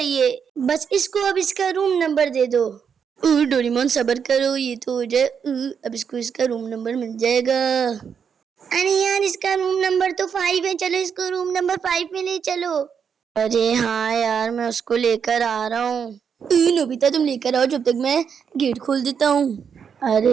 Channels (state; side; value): quieter; left; 7.0 dB